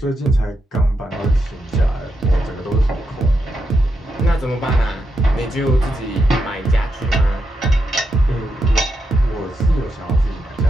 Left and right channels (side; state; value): both; normal; correlation 0.84